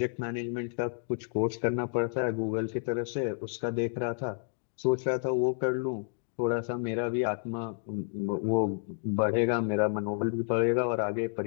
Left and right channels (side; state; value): right; silent; digital silence